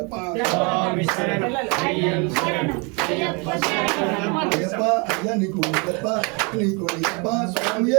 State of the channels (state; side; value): quieter; left; 32.0 dB